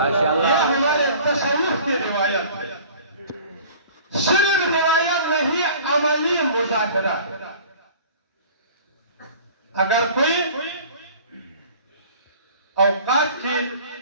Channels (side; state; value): both; inverted; correlation -0.46